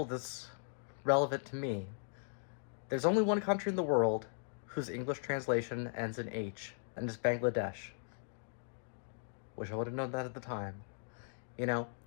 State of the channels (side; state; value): right; silent; digital silence